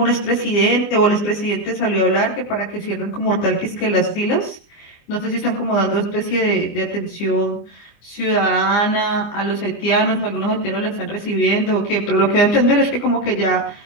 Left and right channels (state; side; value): late; right; 24 ms